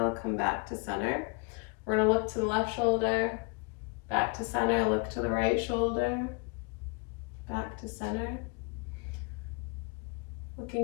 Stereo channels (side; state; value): right; quieter; 32.6 dB